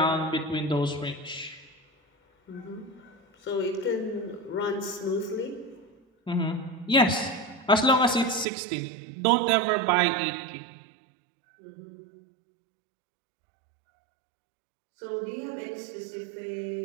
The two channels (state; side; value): drops out; left; at 8.5 s